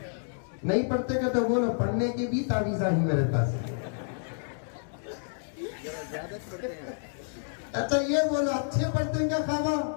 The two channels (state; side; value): silent; right; digital silence